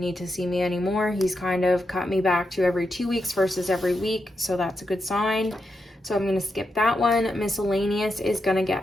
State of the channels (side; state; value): both; normal; correlation 0.85